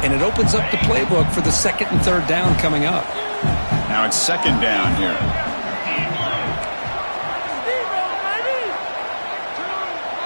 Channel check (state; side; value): inverted; both; correlation -1.00